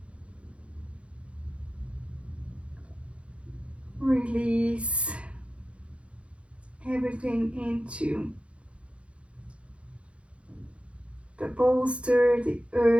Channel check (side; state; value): left; late; 0.061 ms